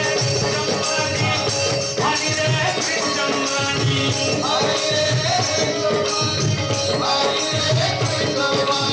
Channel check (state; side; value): identical; both; correlation 1.00